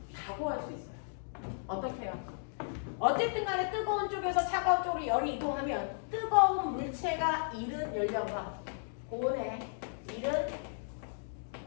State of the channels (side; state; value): right; silent; digital silence